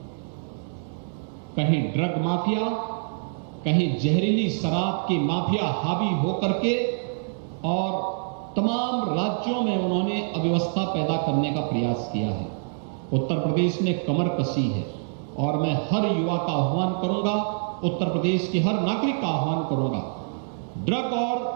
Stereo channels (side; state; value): left; silent; digital silence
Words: कहीं ड्रग माफिया, कहीं जहरीली शराब की माफिया हावी होकर के और तमाम राज्यों में उन्होंने अव्यवस्था पैदा करने का प्रयास किया है। उत्तर प्रदेश ने कमर कसी है और मैं हर युवा का आह्वान करूंगा, उत्तर प्रदेश के हर नागरिक का आह्वान करूंगा, ड्रग और